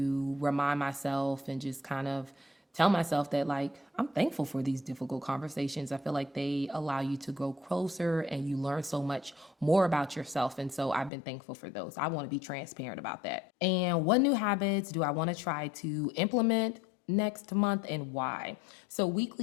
remind myself and just kind of tell myself that like I'm thankful for these difficult conversations. I feel like they allow you to grow closer and you learn so much more about yourself. And so I've been thankful for those. I want to be transparent about that. And what new habits do I want to try to implement next month and why? So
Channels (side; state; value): right; drops out; at 11.1 s